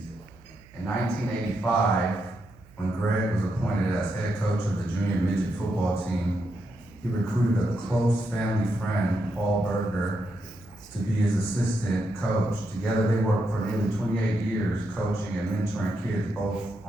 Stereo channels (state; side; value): noise; right; hum, 25 dB below the sound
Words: In 1985, when Greg was appointed as head coach of the junior midget football team, he recruited a close family friend, Paul Berger, to be his assistant coach. Together they worked for nearly 28 years coaching and mentoring kids both